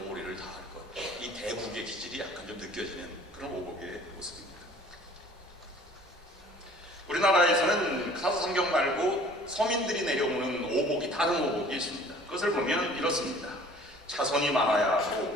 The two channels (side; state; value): both; normal; correlation 0.50